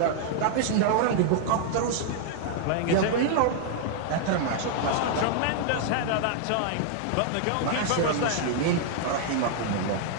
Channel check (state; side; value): different; both; correlation -0.01